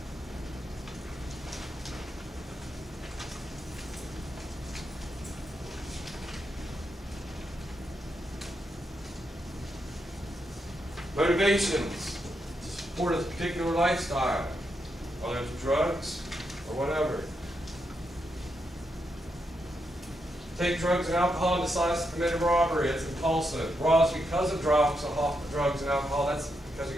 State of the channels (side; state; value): both; normal; correlation 0.82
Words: Motivations to support a particular lifestyle, whether it's drugs or whatever. Take drugs and alcohol and decides to commit a robbery. It's impulsive. Robs because of drugs and alcohol. That's because of